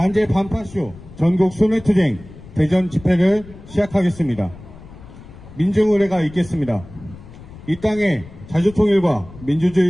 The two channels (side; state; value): left; noise; rumble, 18 dB below the sound